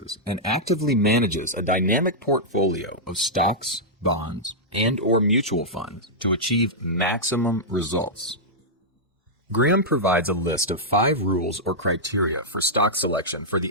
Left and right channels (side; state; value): both; normal; correlation -0.09